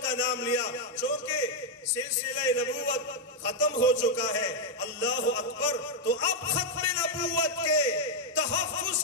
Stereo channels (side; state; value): both; normal; correlation -0.01